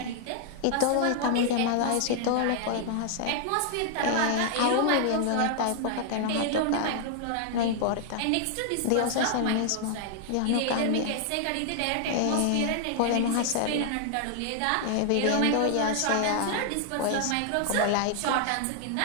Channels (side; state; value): both; different; correlation 0.00